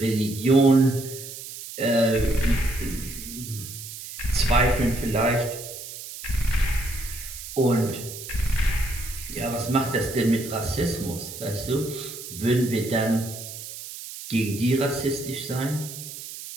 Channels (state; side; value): noise; right; hiss, 11 dB below the sound